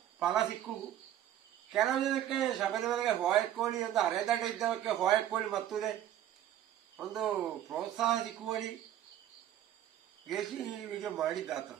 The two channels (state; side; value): quieter; left; 11.6 dB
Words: ಫಲ ಸಿಕ್ಕು. ಕೆಲವು ದಿನಕ್ಕೆ ಶಬರಿಮಲೆಗೆ ಹೋಯಕ್ಕೋಳಿ ಒಂದು ಅರೆದಡ್ಡ ಇದ್ದವಕ್ಕೆ ಹೋಯಕ್ಕೋಳಿ ಮತ್ತುದೇ ಒಂದು ಪ್ರೋತ್ಸಾಹ ಸಿಕ್ಕುವಳಿ ಗೆಸಿ ವಿಡಿಯೋ ಮಾಡಿದ್ದಾತ